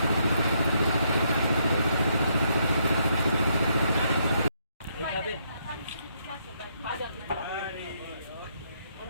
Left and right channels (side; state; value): both; inverted; correlation -0.74